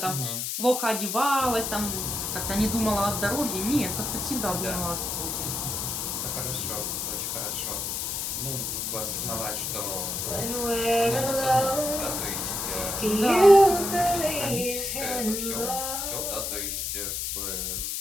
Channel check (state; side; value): noise; left; hiss, 2 dB below the sound